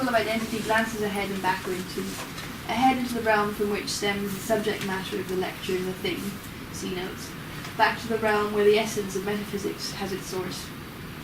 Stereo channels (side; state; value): both; identical; correlation 1.00